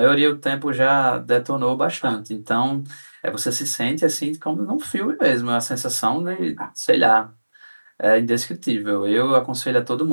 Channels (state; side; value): inverted; both; correlation -1.00